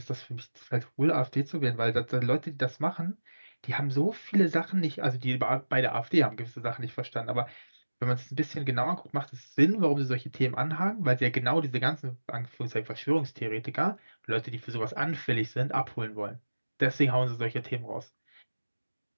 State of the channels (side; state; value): both; inverted; correlation -1.00